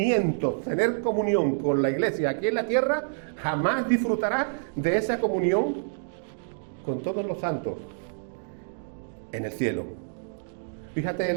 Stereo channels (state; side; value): silent; left; digital silence